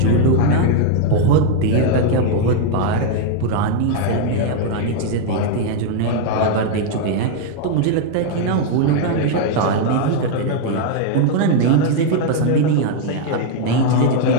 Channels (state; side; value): different; both; correlation 0.00